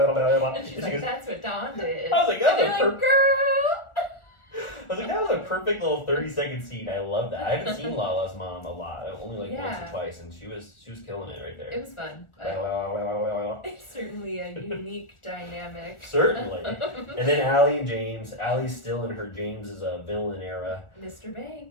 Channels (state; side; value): late; right; 1.4 ms